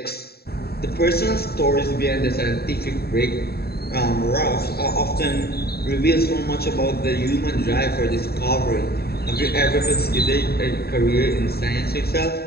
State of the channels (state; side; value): late; right; 0.46 ms